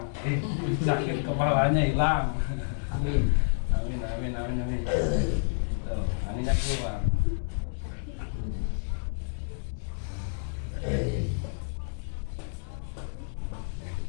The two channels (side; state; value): right; silent; digital silence